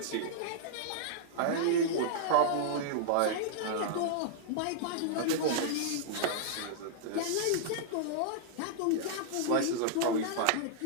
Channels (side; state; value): both; different; correlation -0.01